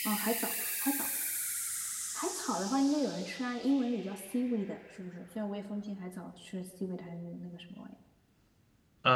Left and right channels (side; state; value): both; identical; correlation 1.00